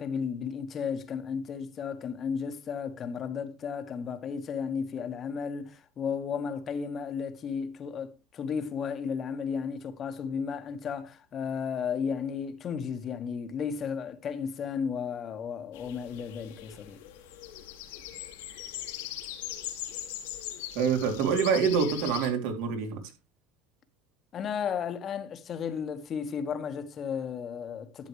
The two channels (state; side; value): normal; both; correlation 0.48